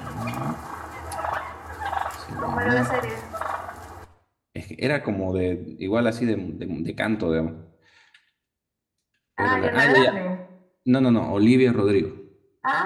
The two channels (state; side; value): identical; both; correlation 1.00